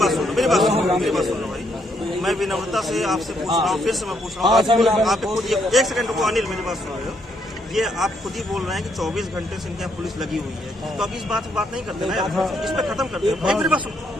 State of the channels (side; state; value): both; normal; correlation 0.74